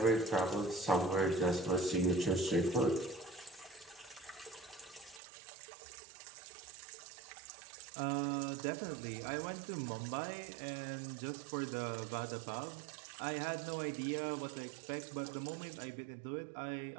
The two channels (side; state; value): left; drops out; at 5.2 s